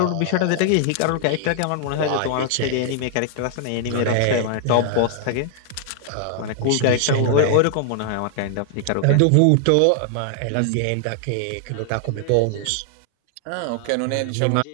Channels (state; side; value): different; both; correlation 0.00